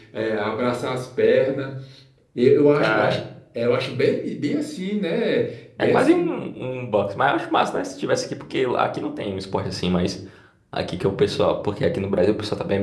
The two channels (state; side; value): identical; both; correlation 1.00